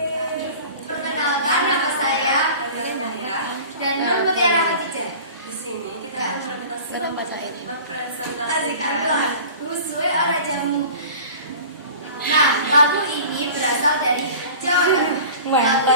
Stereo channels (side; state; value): both; inverted; correlation -0.41